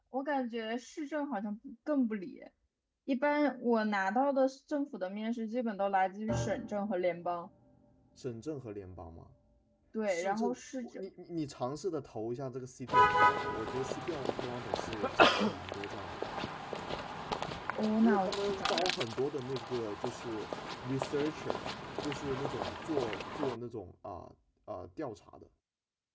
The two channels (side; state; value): both; identical; correlation 1.00